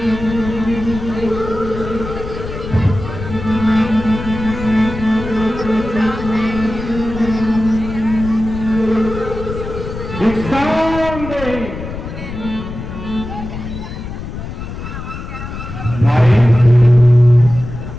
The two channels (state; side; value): noise; left; rumble, 9 dB below the sound